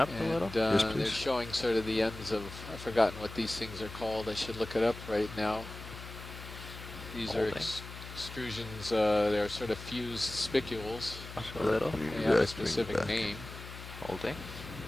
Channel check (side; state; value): left; noise; hum, 12 dB below the sound